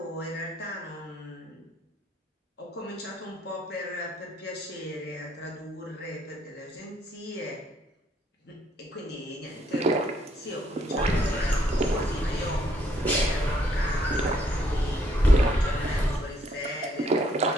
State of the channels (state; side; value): normal; both; correlation 0.69